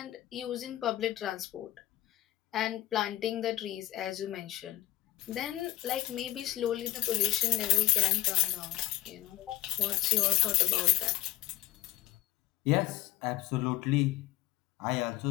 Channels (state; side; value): quieter; right; 15.0 dB